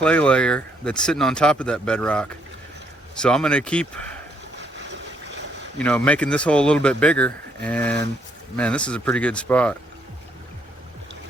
layer that's sitting on top of that bedrock. So I'm gonna keep, making this hole a little bit bigger, and man, this is a pretty good spot.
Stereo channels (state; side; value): normal; both; correlation 0.71